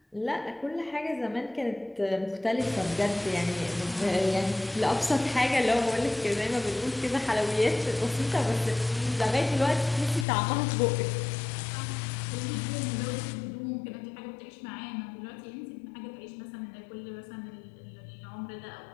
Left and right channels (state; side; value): drops out; right; at 10.2 s